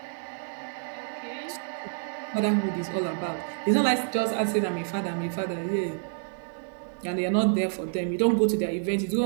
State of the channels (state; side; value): silent; left; digital silence